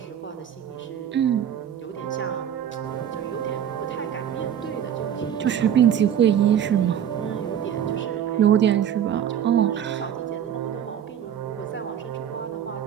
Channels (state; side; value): quieter; left; 9.4 dB